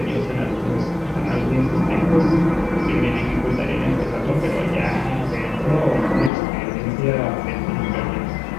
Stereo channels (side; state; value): right; drops out; at 6.3 s